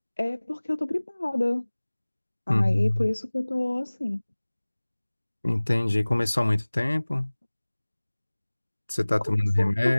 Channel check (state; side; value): inverted; both; correlation -1.00